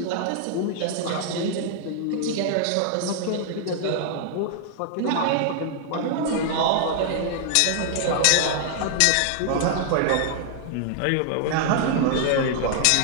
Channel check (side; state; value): both; different; correlation 0.00